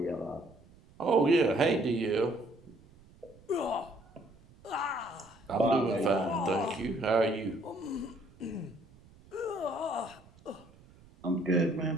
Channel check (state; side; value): noise; right; rumble, 25 dB below the sound